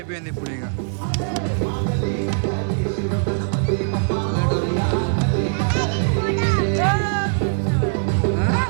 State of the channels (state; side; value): silent; left; 60 dB below the other